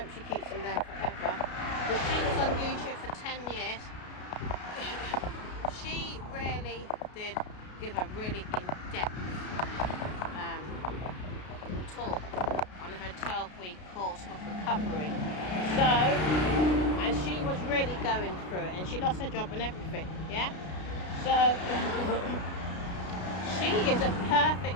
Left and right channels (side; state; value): right; late; 33 ms